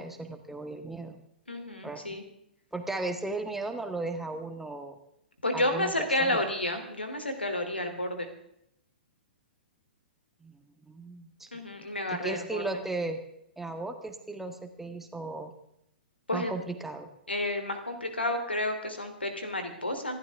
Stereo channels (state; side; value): normal; both; correlation -0.15